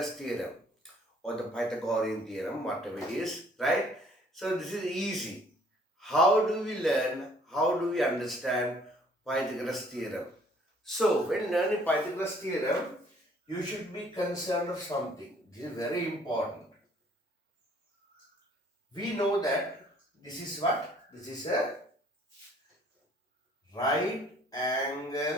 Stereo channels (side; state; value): both; normal; correlation 0.59